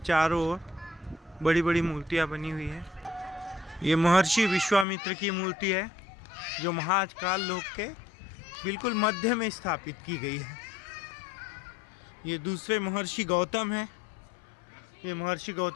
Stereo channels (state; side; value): drops out; right; at 4.9 s